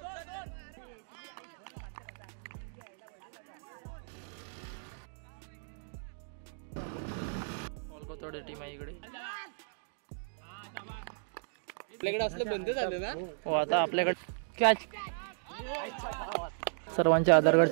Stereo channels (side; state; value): left; silent; digital silence